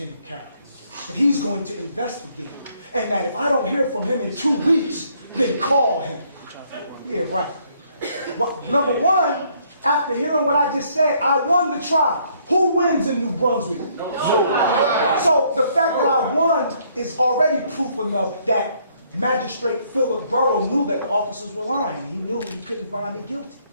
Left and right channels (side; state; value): both; inverted; correlation -0.67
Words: Carroll, and he's going to investigate, and that if I don't hear from him in 2 weeks, then call him. Yeah, right. Well, number one, after hearing what I just said, I won the trial. Who wins in New Brunswick? No. So the fact that I won is already proof enough that Magistrate Philip Burrow knew that the officers were lying. He knew he couldn't find me guilty.